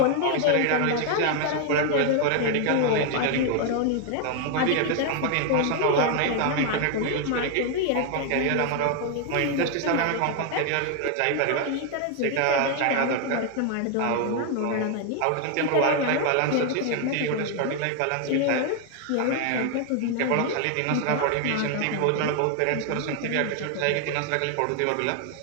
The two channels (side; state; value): both; different; correlation 0.01